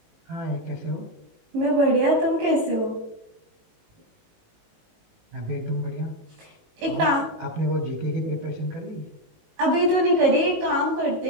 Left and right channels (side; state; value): left; late; 19 ms